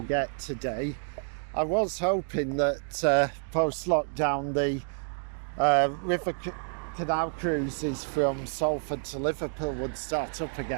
get today. I was hoping that post-lockdown the canal cruises from Salford to Liverpool would start up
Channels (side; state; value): left; silent; 59 dB below the other